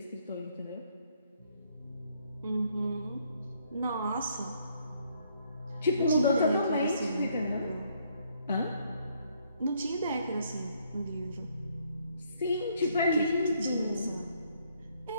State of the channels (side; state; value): both; inverted; correlation -0.69